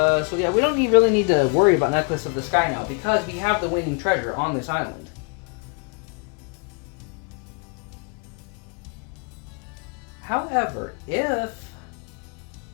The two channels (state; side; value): quieter; right; 35.5 dB